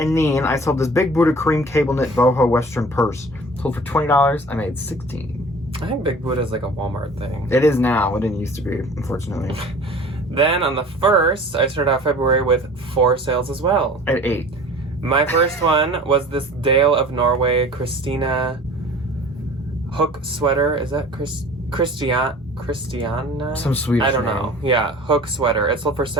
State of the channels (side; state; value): both; normal; correlation 0.44